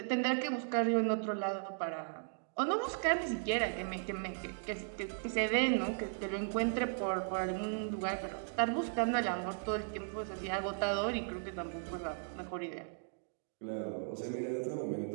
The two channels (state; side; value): silent; left; digital silence